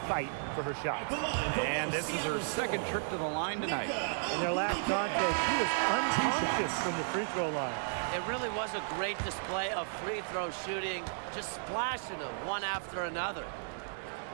for her shots. And this is her second trip to the line tonight. In their last contest, she was unconscious from the free throw line. It really was a great display of free throw shooting, just splashing them one after another.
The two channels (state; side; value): silent; left; digital silence